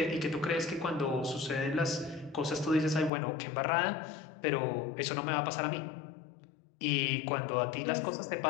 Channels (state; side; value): drops out; right; at 3.1 s